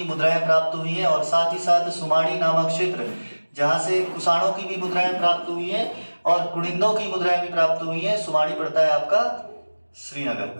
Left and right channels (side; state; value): both; inverted; correlation -1.00